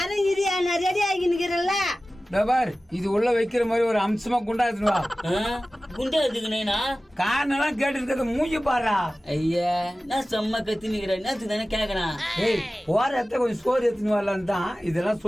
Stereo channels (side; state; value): both; normal; correlation 0.96